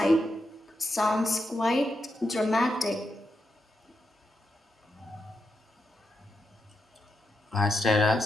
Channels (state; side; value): normal; both; correlation 0.85